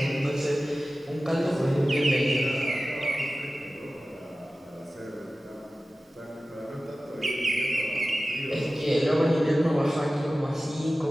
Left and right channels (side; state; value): both; normal; correlation 0.96